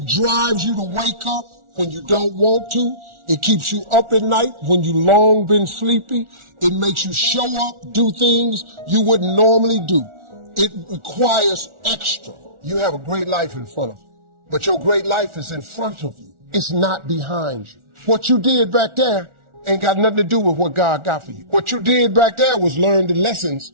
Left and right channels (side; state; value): left; late; 1.4 ms